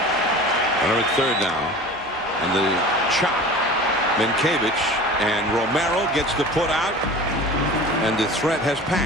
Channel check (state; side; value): normal; both; correlation 0.38